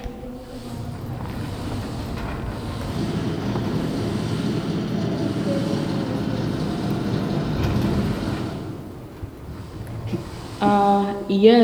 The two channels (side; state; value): both; identical; correlation 1.00